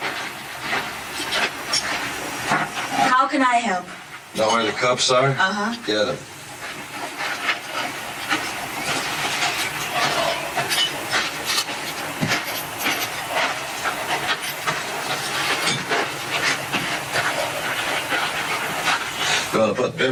How can I help? Know where the cups are? Uh-huh. Get them. Gonna put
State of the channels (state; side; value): identical; both; correlation 1.00